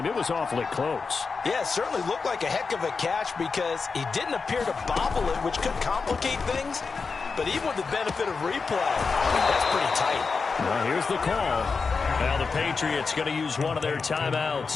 it was awfully close. Yeah, it certainly looked like a heck of a catch because he didn't appear to bobble it, which could complicate things. But even with the benefit of replay, that's pretty tight. Well, here's the call. Now the Patriots going to use one of their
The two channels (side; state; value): right; quieter; 4.8 dB